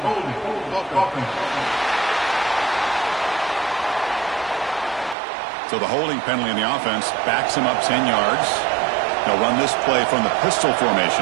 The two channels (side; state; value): left; drops out; at 5.2 s